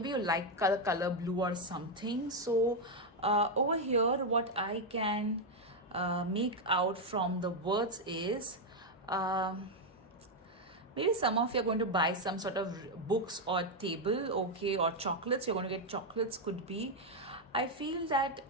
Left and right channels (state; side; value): normal; both; correlation 0.03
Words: you like color blue or something. So over here what I can make out from the words is maybe some of you are going to buy some sort of books or table, okay, or chocolates. You're going to get chocolates, could be. I feel that